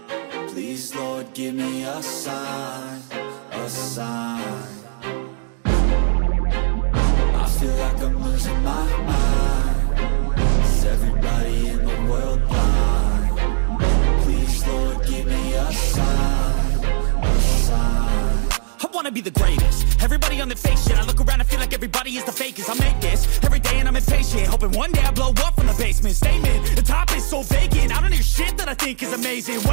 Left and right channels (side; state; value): left; silent; digital silence